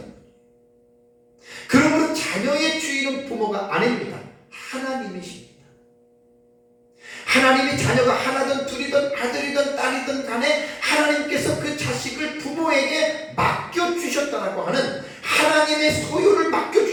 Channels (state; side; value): identical; both; correlation 1.00